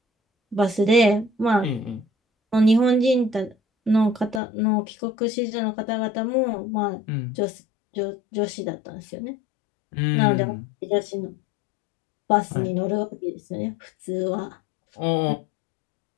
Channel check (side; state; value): right; drops out; at 4.4 s